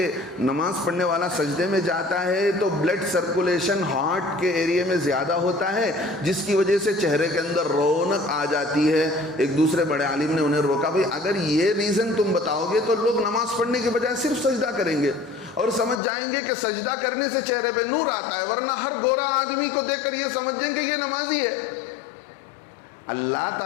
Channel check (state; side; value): drops out; right; at 16.0 s